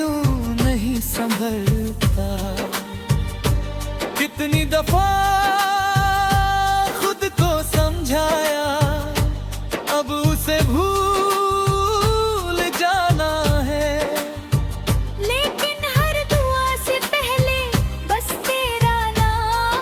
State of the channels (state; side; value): identical; both; correlation 1.00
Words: नहीं संभलता। कितनी दफा खुद को समझाया, अब उसे भूल जाना है। लेकिन हर दुआ से पहले बस तेरा